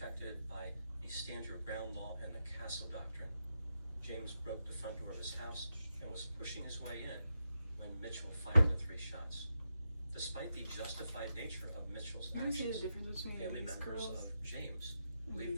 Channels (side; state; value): both; inverted; correlation -0.87